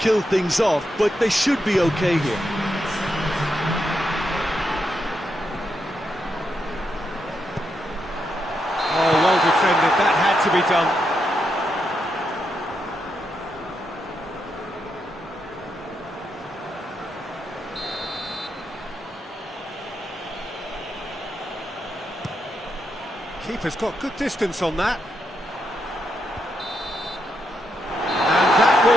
things off, but they should be okay here. Oh, well defended. That had to be done. Keeper's got good distance on that. And that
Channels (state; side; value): normal; both; correlation 0.82